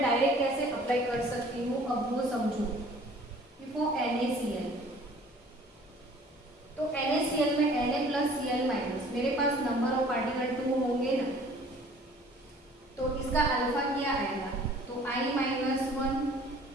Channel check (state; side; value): normal; both; correlation 0.52